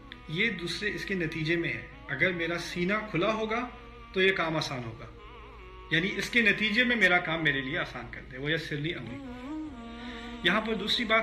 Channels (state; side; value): identical; both; correlation 1.00